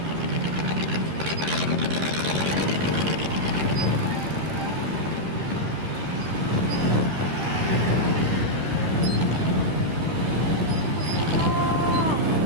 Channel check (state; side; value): late; left; 12 ms